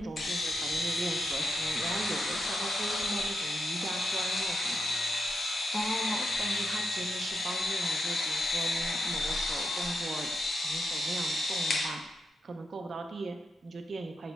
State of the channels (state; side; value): normal; both; correlation 0.85